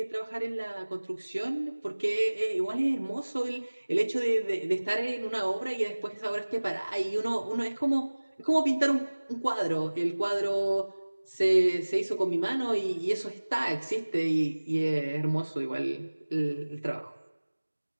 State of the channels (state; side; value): inverted; both; correlation -1.00